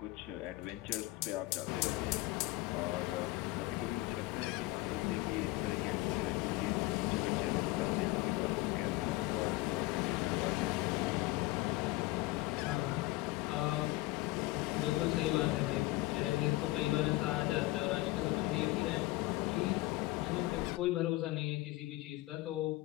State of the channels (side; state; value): right; quieter; 19.5 dB